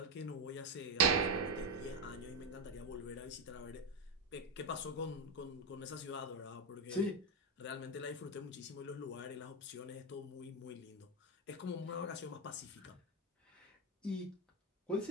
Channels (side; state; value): both; normal; correlation 0.08